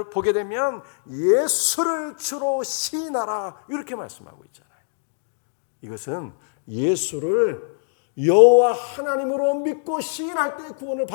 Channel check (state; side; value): silent; right; digital silence